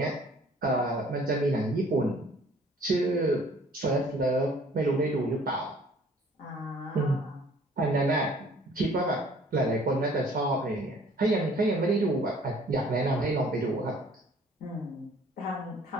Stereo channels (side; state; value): both; normal; correlation 0.55